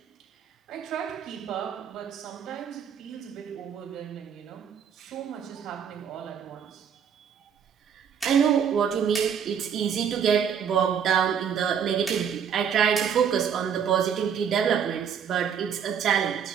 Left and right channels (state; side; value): quieter; left; 7.8 dB